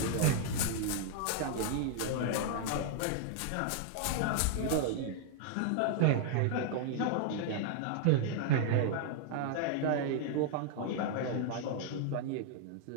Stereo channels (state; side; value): different; both; correlation 0.00